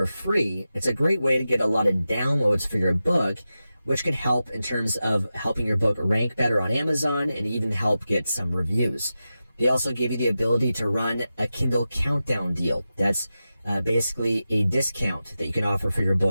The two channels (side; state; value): both; inverted; correlation -0.92